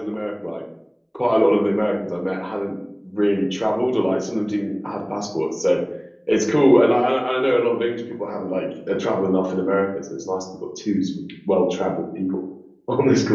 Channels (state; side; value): identical; both; correlation 1.00